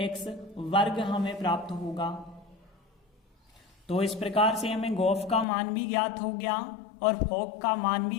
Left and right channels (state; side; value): drops out; right; at 5.5 s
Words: वर्ग हमें प्राप्त होगा। तो इस प्रकार से हमें गॉस का मान भी ज्ञात हो गया और फॉक का मान